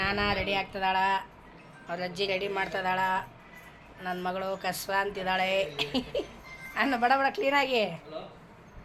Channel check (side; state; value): both; identical; correlation 1.00